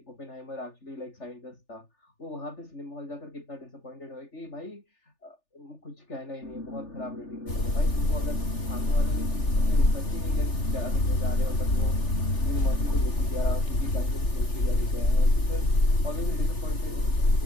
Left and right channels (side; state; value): right; late; 3.4 ms